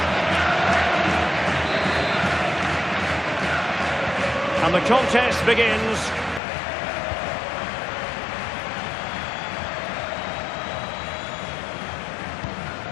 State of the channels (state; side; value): drops out; right; at 6.4 s